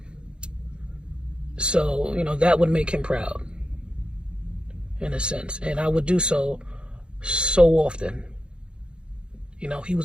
so that would make him proud, in a sense, and I would do so often. He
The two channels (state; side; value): late; left; 0.053 ms